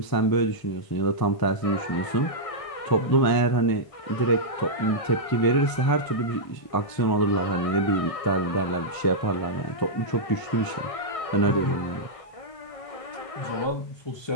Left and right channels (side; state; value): right; late; 1.0 ms